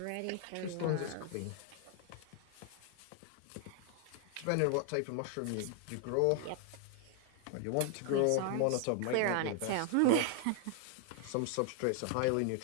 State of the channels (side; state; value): both; different; correlation 0.00